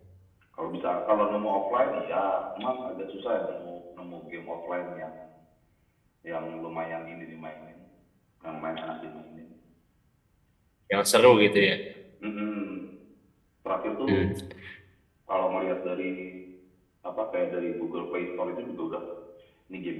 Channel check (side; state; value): both; identical; correlation 1.00